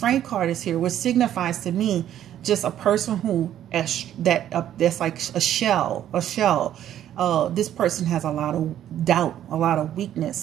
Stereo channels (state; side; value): quieter; left; 11.2 dB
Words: card is here, which signifies to me just a person who that's like a shell. This person has a lot of doubt, a lot of